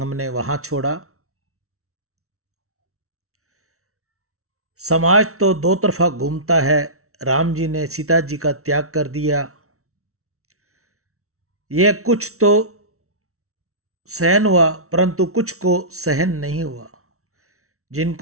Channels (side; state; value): left; late; 0.63 ms